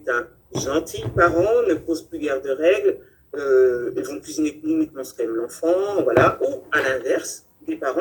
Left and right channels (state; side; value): identical; both; correlation 1.00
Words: un gentil parent, ne pose plus guère de règles, ils vont cuisiner uniquement ce qu'aime l'enfant, voilà. Ou à l'inverse, des